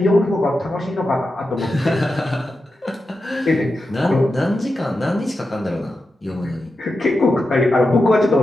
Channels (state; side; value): normal; both; correlation 0.90